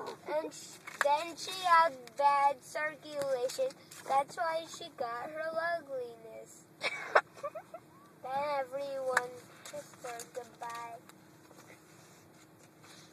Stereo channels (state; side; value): identical; both; correlation 1.00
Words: and then she had bad circulation. That's why she got her ugliness. Then everyone kissed her goodbye.